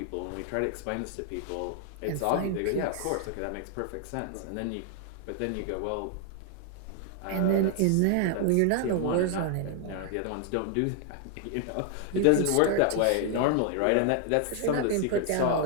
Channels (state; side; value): different; both; correlation 0.00